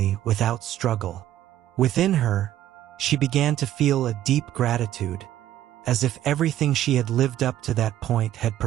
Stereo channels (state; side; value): quieter; left; 12.7 dB